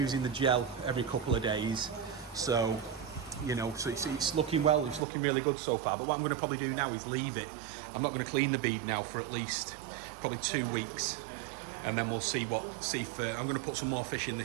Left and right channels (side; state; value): left; drops out; at 5.1 s